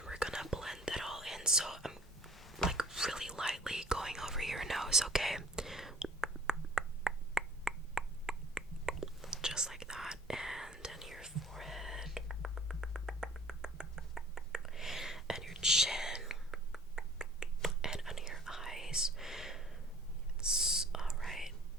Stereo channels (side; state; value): both; normal; correlation 0.51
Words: we're gonna blend that all in, so I'm like really lightly going over your nose, okay? Just like that, and then your forehead and your chin and under your eyes. Yes, alright.